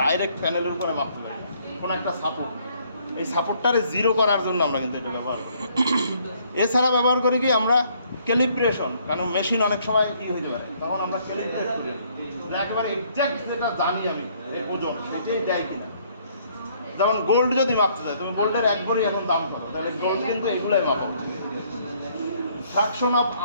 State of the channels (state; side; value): inverted; both; correlation -0.65